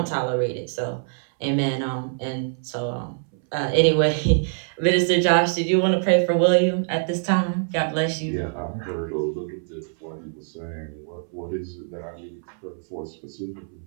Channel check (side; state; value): left; silent; 62 dB below the other